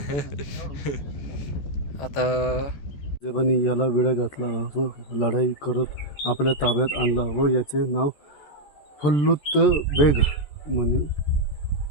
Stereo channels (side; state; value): right; late; 14 ms